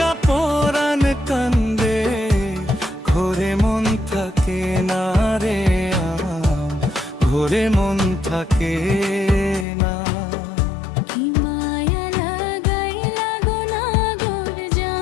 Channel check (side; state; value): right; drops out; at 9.7 s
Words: পরাণ কান্দে, ঘরে মন থাকে না রে, ঘরে মন থাকে না।